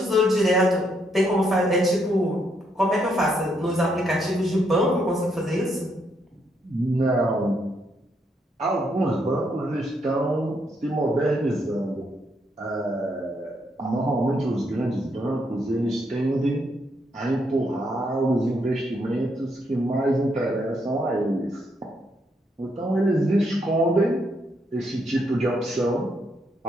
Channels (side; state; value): both; normal; correlation 0.75